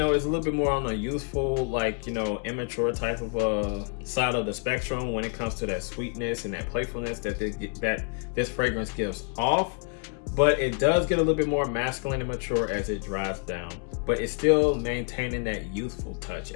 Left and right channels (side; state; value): right; quieter; 37.7 dB